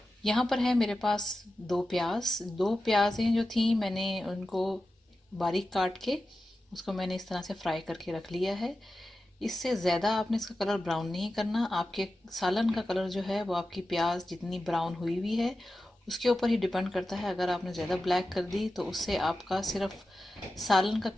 यहाँ पर है मेरे पास दो प्याज़ें जो थी, मैंने उनको बारीक काट के उसको मैंने इस तरह से फ्राई करके रख लिया है। इससे ज़्यादा आपने इसका कलर ब्राउन नहीं करना। आपके सालन का कलर जो है वो आपकी प्याज जितनी ब्राउन हुई हुई है उसके ऊपर ही डिपेंड करता है। अगर आपने ज़्यादा ब्लैक कर दी तो उससे आपका सिर्फ सालन का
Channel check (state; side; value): normal; both; correlation 0.92